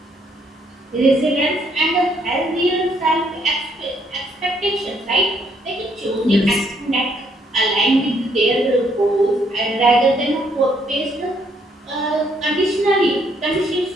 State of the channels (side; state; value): both; normal; correlation 0.70